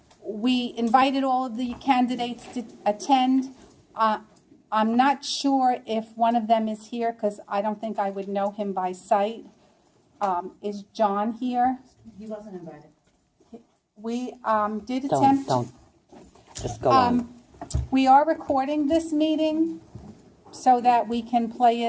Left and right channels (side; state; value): both; identical; correlation 1.00